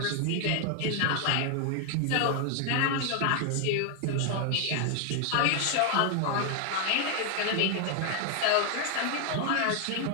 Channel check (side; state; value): both; different; correlation 0.00